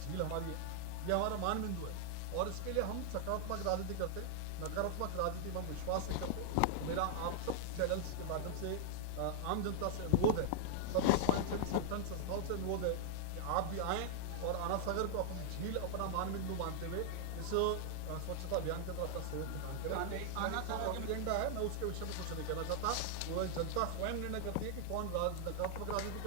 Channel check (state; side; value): different; both; correlation -0.01